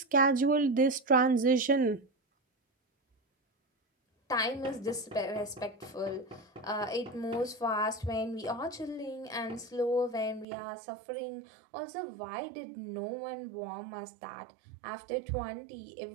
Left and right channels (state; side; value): drops out; left; at 10.5 s